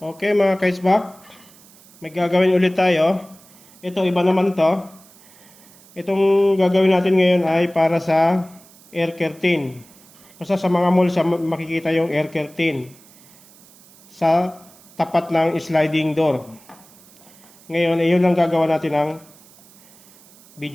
mga kaisbak. May gagawin ulit tayo. Ito iba naman to. Itong gagawin natin ngayon ay para sa air curtain. Basta sa mga mall makikita yung air curtain sa tapat ng sliding door. Ngayon, iyon ang gagawa natin ng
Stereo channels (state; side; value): noise; right; hiss, 25 dB below the sound